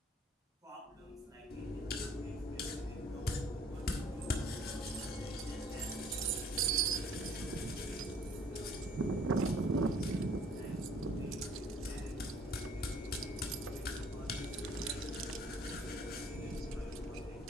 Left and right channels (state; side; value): normal; both; correlation 0.57